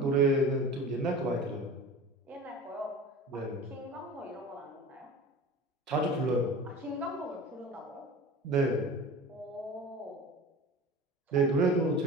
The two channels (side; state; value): both; normal; correlation 0.37